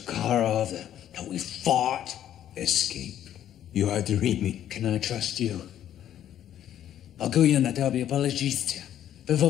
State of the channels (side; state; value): right; quieter; 11.0 dB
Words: that we fought. Escape. You are dreaming. Can I trust you? Могу на тебе положиться в